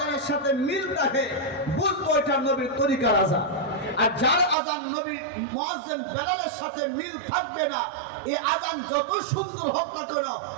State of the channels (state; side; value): drops out; left; at 4.5 s